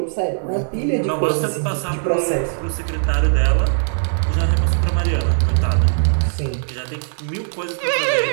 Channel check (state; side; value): silent; left; digital silence